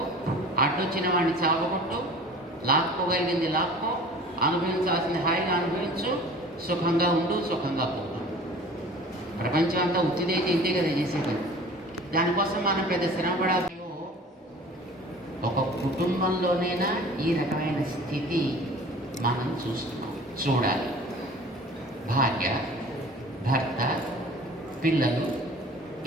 అడ్డొచ్చిన వాడిని చావగొట్టు, లాక్కోగలిగింది లాక్కో, అనుభవించాల్సింది హాయిగా అనుభవించు, సుఖంగా ఉండు, సుఖంగా పోదు. ప్రపంచం అంతా ఉత్తిదైతే ఇంతే కదా చేసేది. దానికోసం మనం పెద్ద శ్రమపడాలి. ఒక కుటుంబంలోనైనా ఈ రకమైన స్థితి మనం చూడాలి. భార్య, భర్త, పిల్లలు,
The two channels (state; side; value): normal; both; correlation 0.44